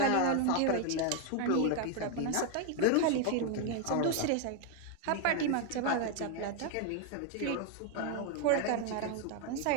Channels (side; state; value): both; different; correlation 0.01